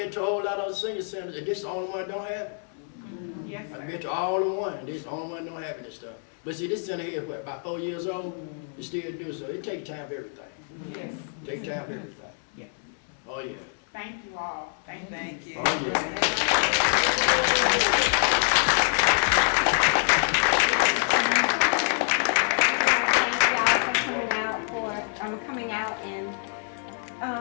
to a whole lot of senior centers, and this is the only one that don't have it. Yes, I've sir. been to all the one, and this is the only one that don't have this stuff. But see, this center here is what, about 4 years old? It still do, so it takes time for everything. Yes. Take time for everything. Yes. Oh, yeah. Thank you all. Thank you. Oh, yeah. Coming out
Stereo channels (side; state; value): right; silent; 61 dB below the other